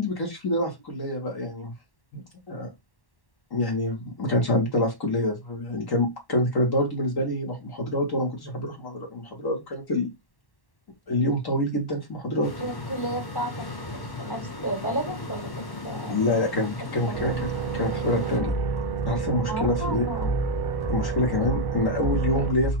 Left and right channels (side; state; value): right; late; 1.1 ms